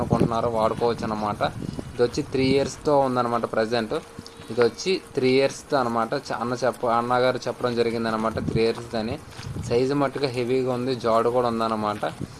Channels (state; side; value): identical; both; correlation 1.00